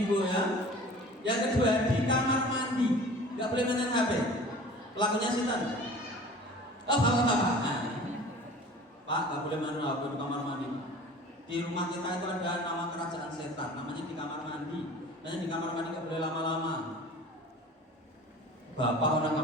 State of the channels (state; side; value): normal; both; correlation 0.43